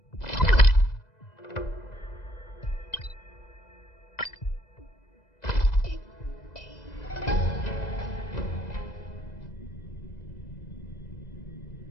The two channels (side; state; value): right; late; 2.0 ms